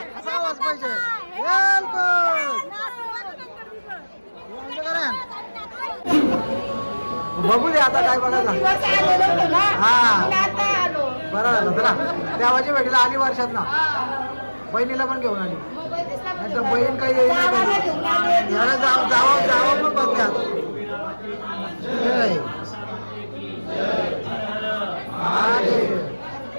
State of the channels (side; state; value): both; inverted; correlation -1.00